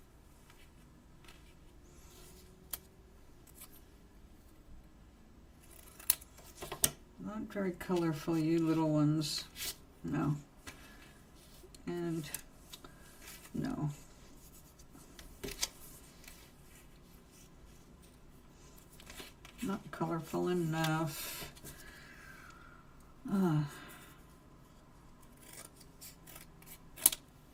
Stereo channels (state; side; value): identical; both; correlation 1.00